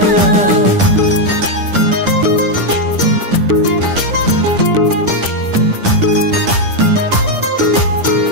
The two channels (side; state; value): left; late; 10 ms